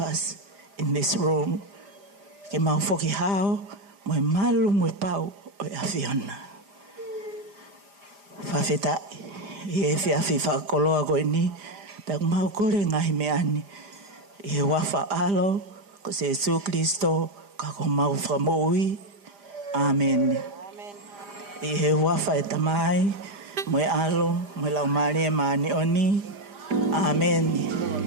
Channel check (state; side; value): late; left; 5.0 ms